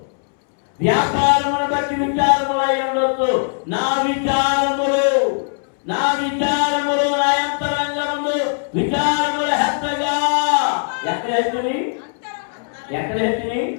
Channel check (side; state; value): right; silent; 66 dB below the other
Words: వ్యాపారమును బట్టి విచారములు అయి ఉండొచ్చు. నా విచారములు, నా విచారములు, నా అంతరంగములు విచారముల హెచ్చగా. ఎక్కడ హెచ్చని? ఎక్కడ హెచ్చని?